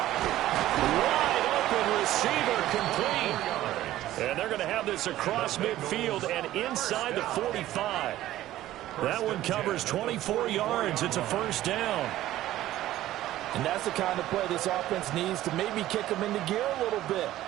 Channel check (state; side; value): quieter; left; 14.4 dB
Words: Wide open receiver complete. And they're going to have this across midfield and inside the 45. That one covers 24 yards. It's a first down. And that's the kind of play this offense needs to maybe kick them into gear a little bit.